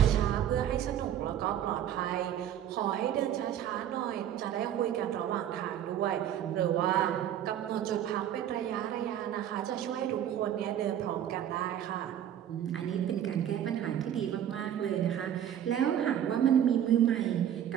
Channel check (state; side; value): quieter; left; 10.4 dB